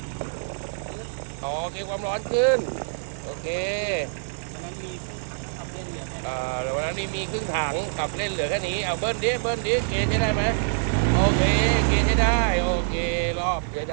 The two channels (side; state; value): left; silent; 61 dB below the other